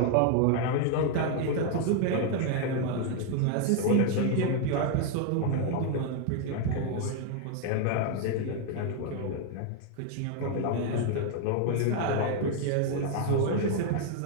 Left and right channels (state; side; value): different; both; correlation 0.00